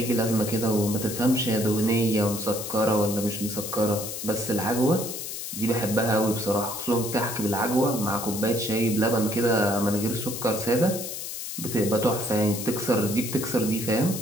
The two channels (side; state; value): left; noise; hiss, 7 dB below the sound